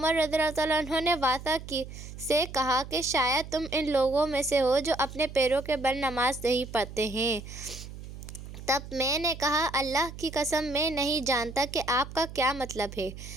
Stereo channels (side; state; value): right; noise; hum, 12 dB below the sound